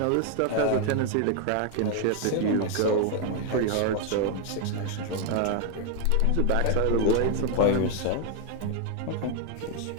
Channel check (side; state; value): both; different; correlation 0.01